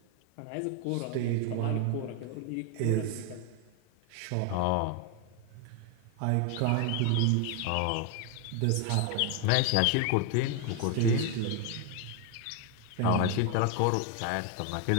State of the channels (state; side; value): different; both; correlation 0.01